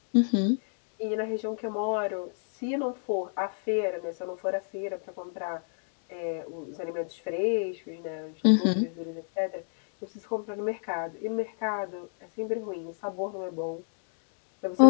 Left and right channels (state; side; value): silent; right; digital silence